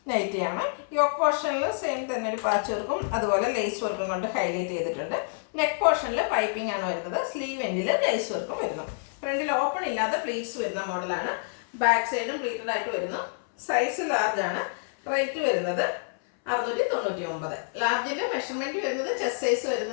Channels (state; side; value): silent; right; 60 dB below the other